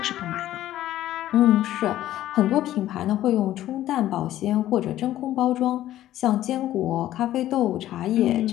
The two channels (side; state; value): right; quieter; 13.5 dB